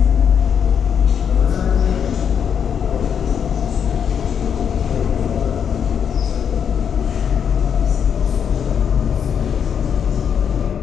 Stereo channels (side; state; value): right; quieter; 7.7 dB